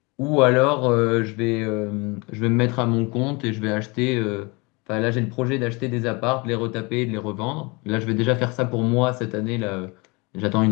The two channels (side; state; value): right; quieter; 27.4 dB